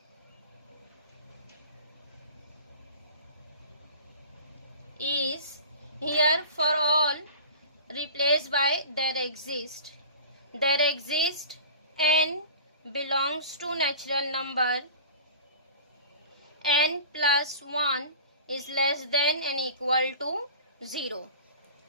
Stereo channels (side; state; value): both; inverted; correlation -0.39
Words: is here for all replaced by there exist. There exist n belongs to natural number, n plus 1 is less than and equal to 0.